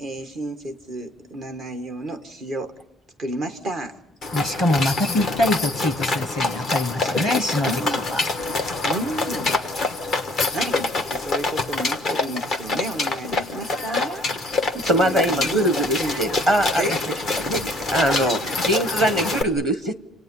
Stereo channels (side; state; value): both; normal; correlation 0.58